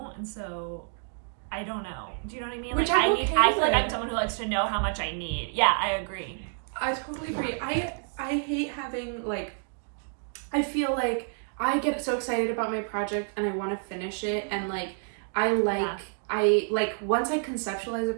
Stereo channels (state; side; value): silent; left; 59 dB below the other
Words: And so, I don't know. Do you know what I mean? Which like, I feel like I'm someone who likes to know how much I need. Yeah, I agree. I totally agree. I hate having, like, I feel like I get so excited about my project, and I want to finish it, and, like, once I conceptualize a